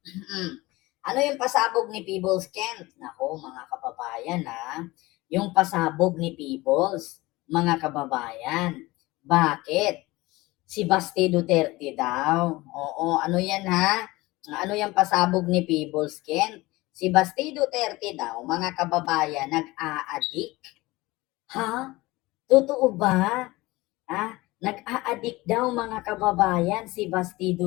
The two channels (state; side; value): quieter; right; 20.6 dB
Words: Ano yung pasabog ni Peebles, Kent? Nako, mga kababayan, yung pasabog ni Peebles, mga kababayan. Bakit? Si Basti Duterte daw. Oo, ano yan Ano yung pasabog ni Peebles, Kent? Si Basti Duterte daw, mga kababayan, nag-a-addict. Ha? Totoo ba? Nag-a-addict daw, mga kababayan, si Basti